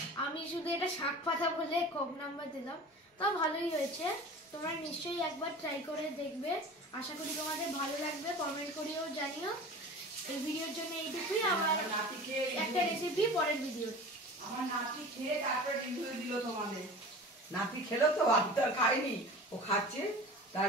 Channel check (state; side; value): normal; both; correlation 0.37